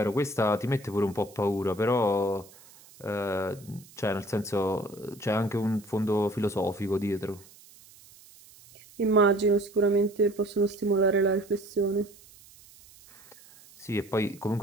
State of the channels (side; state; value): right; noise; hiss, 24 dB below the sound